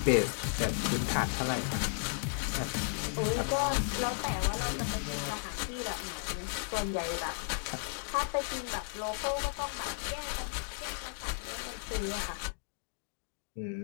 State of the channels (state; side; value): silent; right; digital silence